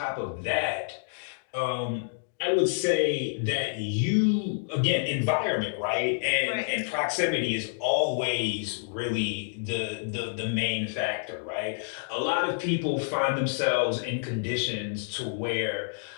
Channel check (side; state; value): right; silent; digital silence